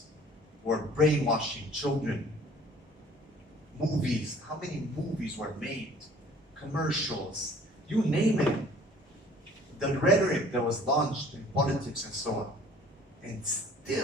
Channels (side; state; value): both; normal; correlation 0.52